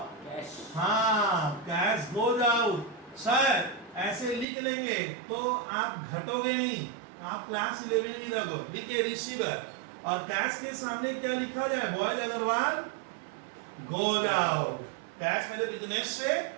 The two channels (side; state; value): left; drops out; at 4.5 s